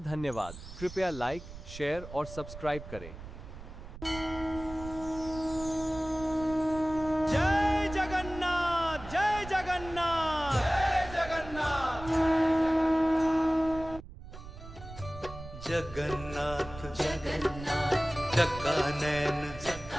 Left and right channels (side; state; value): right; noise; rumble, 13 dB below the sound